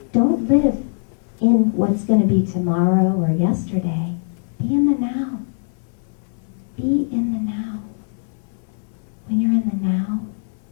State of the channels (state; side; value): silent; right; 60 dB below the other